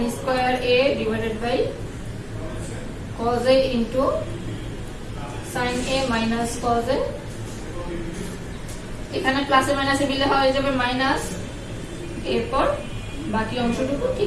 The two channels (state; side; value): identical; both; correlation 1.00